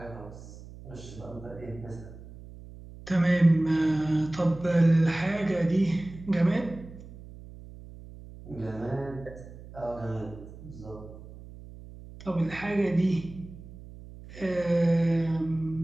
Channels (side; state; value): right; noise; hum, 16 dB below the sound